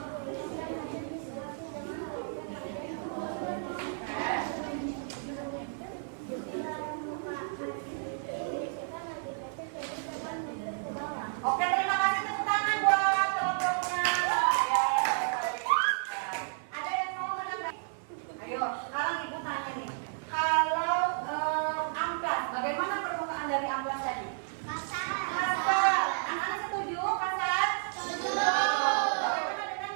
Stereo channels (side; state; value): left; silent; 56 dB below the other